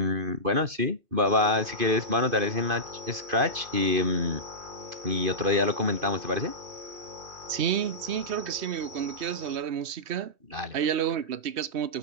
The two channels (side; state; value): left; late; 2.6 ms